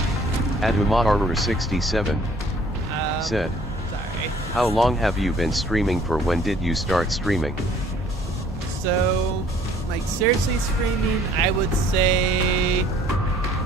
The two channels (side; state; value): both; normal; correlation 0.57